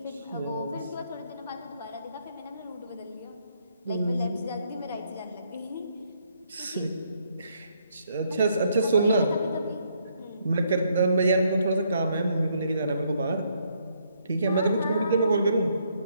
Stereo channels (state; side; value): inverted; both; correlation -0.72